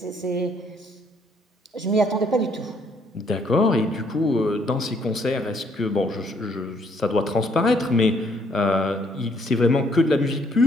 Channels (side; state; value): both; normal; correlation 0.67